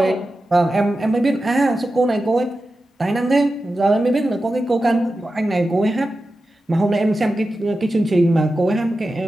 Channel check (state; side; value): normal; both; correlation 0.92